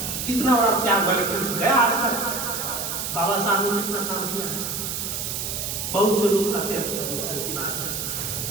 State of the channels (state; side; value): noise; right; hiss, 3 dB below the sound